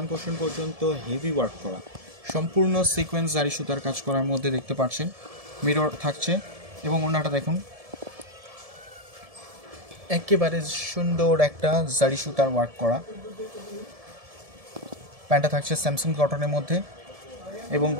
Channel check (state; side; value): late; left; 1.7 ms